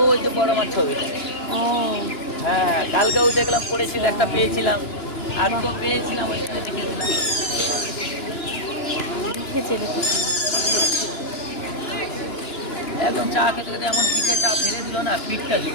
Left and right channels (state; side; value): late; right; 2.9 ms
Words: যে বড় মাছ ছবিটা। ও হ্যাঁ, কালকেও দেখলাম পড়েছিল, একটা পেয়েছিলাম, আজকেও পেয়েছিলাম, ওইখানে দেখেছিলাম। লিখেছে দেখো। একদম চা খেতে খেতে এমন পিঠে চা ফেলে দিল না, পিঠটা